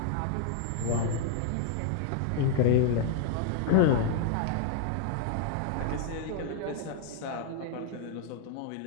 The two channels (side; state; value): both; different; correlation 0.00